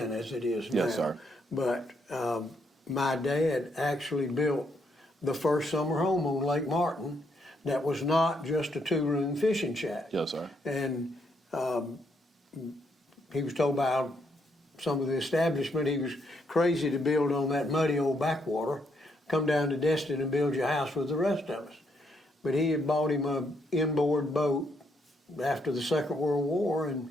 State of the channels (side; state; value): both; normal; correlation 0.75